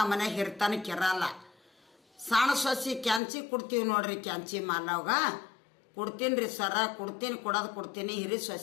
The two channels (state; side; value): drops out; right; at 3.2 s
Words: ಮನೆಗೆ ಹಿರಿತನಕ್ಕೆ ಇರಲ್ಲ. ಸಣ್ಣ ಸೊಸಿ ಕ್ಯಾಂಚಿ ಕೊಡ್ತೀವಿ ನೋಡ್ರಿ, ಕ್ಯಾಂಚಿ ಮಾಲವ್ಗ ಕೊಡ್ತೀನಿ ರೀ ಸರ, ಕೊಡ್ತೀನಿ. ಹಿರಿ